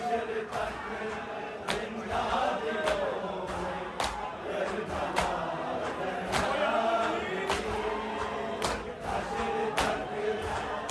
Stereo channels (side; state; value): both; identical; correlation 1.00